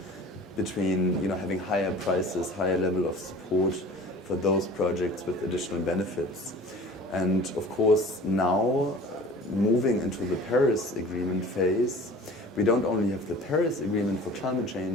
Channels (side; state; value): both; normal; correlation 0.43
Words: between, you know, having higher prices, higher level of support for those projects with additional benefits. And of course, now moving into the Paris Agreement phase, we don't only have the Paris Agreement for climate